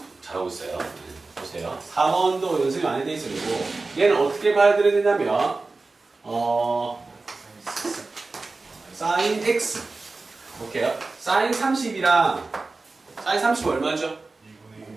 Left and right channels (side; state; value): left; quieter; 3.6 dB